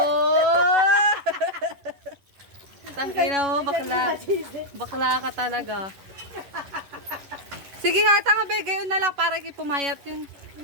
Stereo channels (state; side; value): late; left; 11 ms